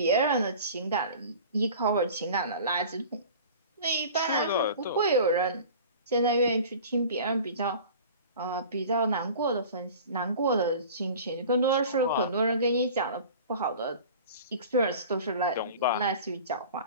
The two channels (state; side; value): inverted; both; correlation -0.41